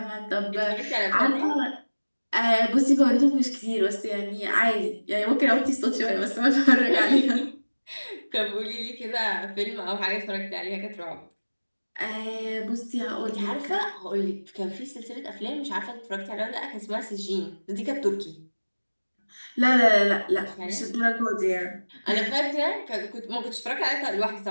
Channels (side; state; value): both; inverted; correlation -1.00